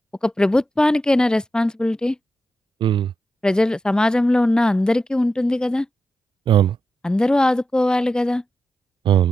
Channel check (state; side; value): normal; both; correlation 0.88